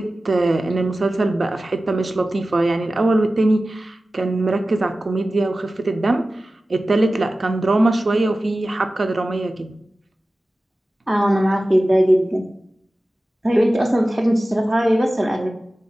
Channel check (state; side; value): normal; both; correlation 0.95